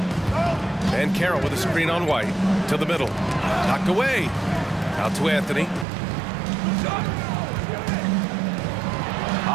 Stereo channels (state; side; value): drops out; left; at 5.9 s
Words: And Carroll with a screen on White to the middle. Knocked away. Out to Anthony.